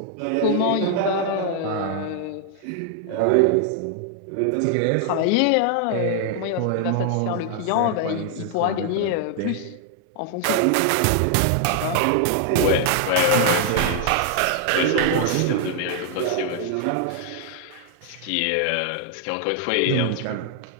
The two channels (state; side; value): different; both; correlation 0.00